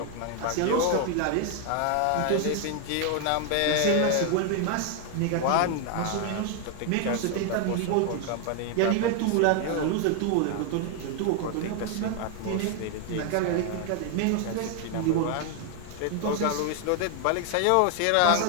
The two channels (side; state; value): both; different; correlation 0.00